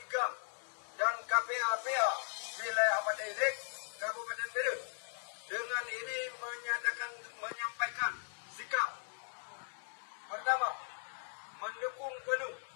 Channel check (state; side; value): silent; right; 52 dB below the other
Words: GAM dan KPA-PA wilayah Madailik, Kabupaten Bedut dengan ini menyampaikan sikap. Pertama, mendukung penuh